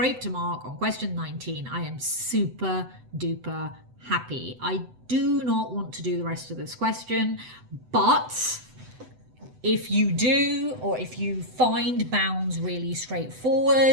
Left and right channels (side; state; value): left; late; 7.9 ms